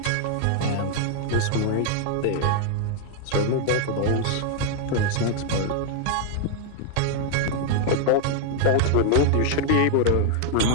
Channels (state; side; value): different; both; correlation 0.00